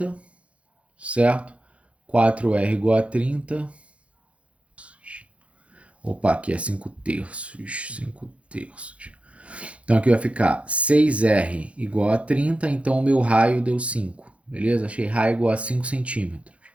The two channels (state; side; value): late; left; 0.062 ms